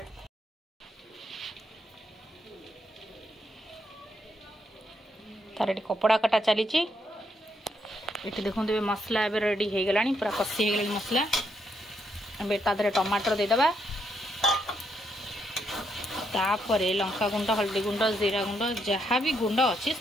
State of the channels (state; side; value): normal; both; correlation 0.78